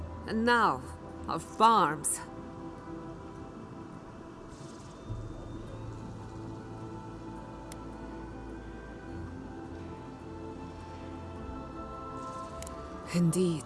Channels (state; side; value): identical; both; correlation 1.00